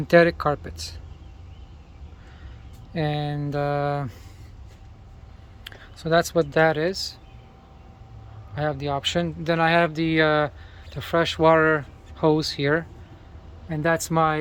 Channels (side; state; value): both; identical; correlation 1.00